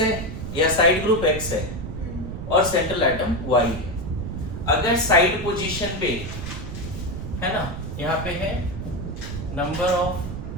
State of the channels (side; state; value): right; noise; rumble, 7 dB below the sound